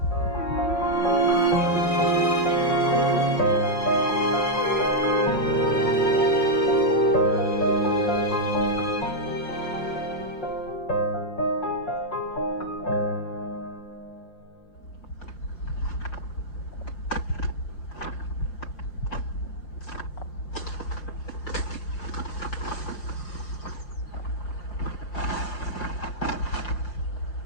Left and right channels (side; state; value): right; late; 5.6 ms